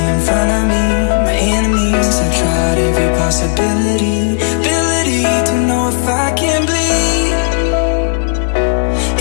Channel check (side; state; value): right; silent; digital silence